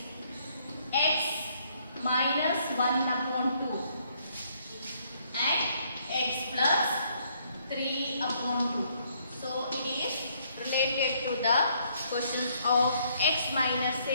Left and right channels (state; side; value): inverted; both; correlation -0.68